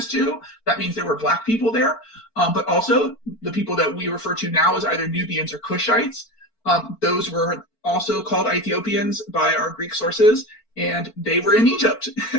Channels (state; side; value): late; right; 4.5 ms